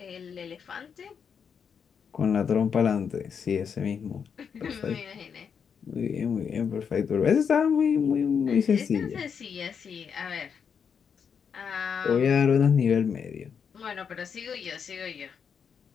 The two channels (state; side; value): quieter; right; 6.8 dB